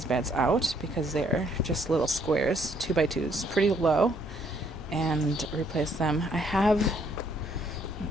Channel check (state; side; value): normal; both; correlation 0.68